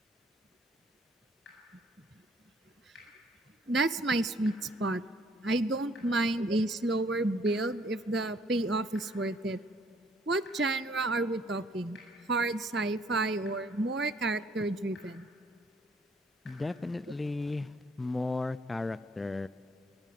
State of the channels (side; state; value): both; normal; correlation 0.63